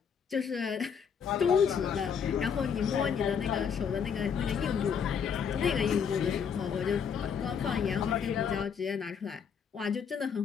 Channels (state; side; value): quieter; right; 7.1 dB